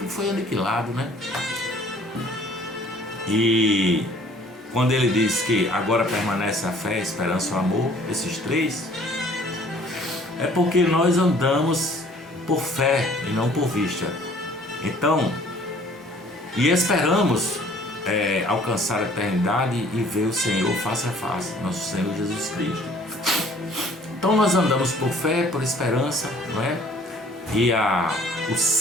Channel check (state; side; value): normal; both; correlation 0.55